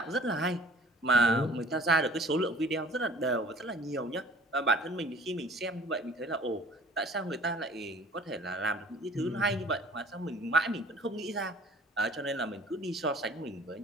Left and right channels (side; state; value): both; normal; correlation 0.50